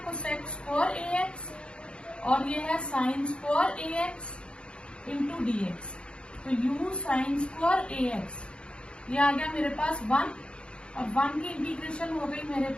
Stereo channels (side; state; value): right; late; 0.056 ms